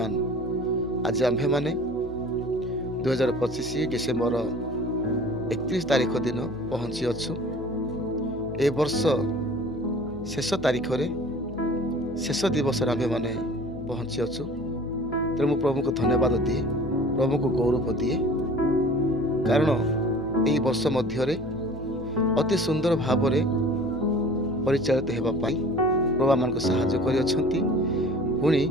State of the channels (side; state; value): left; noise; hum, 15 dB below the sound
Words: ଆଜି ଆମ୍ଭେମାନେ 2025 ଡିସେମ୍ବର 31 ତାରିଖ ଦିନ ପହଞ୍ଚି ଅଛୁ। ଏ ବର୍ଷ ଶେଷ ତାରିଖରେ ଶେଷ ଦିବସରେ ଆମ୍ଭେମାନେ ପହଞ୍ଚି ଅଛୁ। ତେଣୁ ମୁଁ ପ୍ରଭୁଙ୍କୁ ଧନ୍ୟବାଦ ଦିଏ, ପ୍ରଭୁଙ୍କୁ ଗୌରବ ଦିଏ, କାରଣ ଏହି ବର୍ଷ ମଧ୍ୟରେ ଅତି ସୁନ୍ଦର ଭାବରେ ପରିଚାଳିତ ହେବା ପାଇଁ ପ୍ରଭୁ ଆମମାନଙ୍କୁ ସାହାଯ୍ୟ କରିଅଛନ୍ତି। ପୁଣି